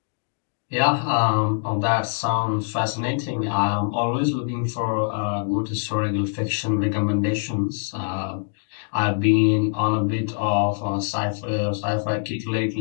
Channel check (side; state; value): right; silent; digital silence